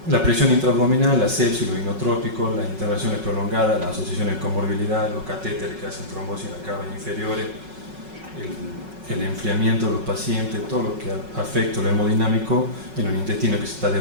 La presión intraabdominal, la sepsis, los inotrópicos, las intervenciones prolongadas, las asociaciones de comorbilidad, los catéteres que hacen trombosis en las capas inferiores, el enfriamiento de los pacientes, todo lo que afecta lo hemodinámico en un intestino que se está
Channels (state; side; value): late; left; 5.4 ms